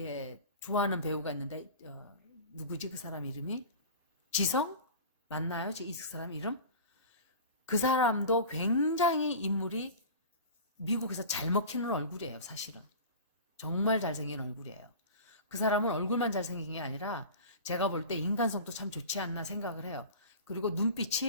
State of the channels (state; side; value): inverted; both; correlation -0.35